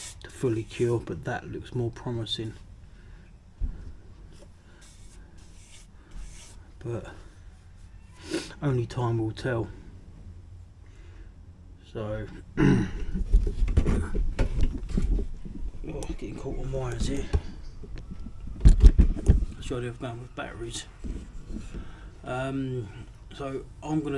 to fully cure, but that looks more promising. But only time will tell. So, getting caught on wires here. That's the idea of going with batteries. So I'm going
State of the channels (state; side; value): identical; both; correlation 1.00